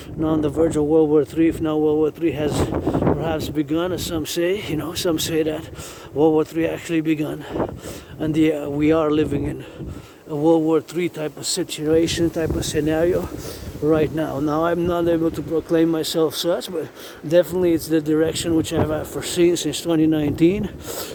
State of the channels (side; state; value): both; identical; correlation 1.00